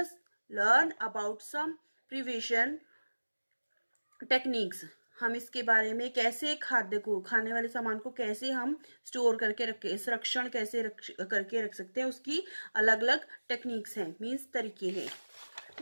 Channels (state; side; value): inverted; both; correlation -1.00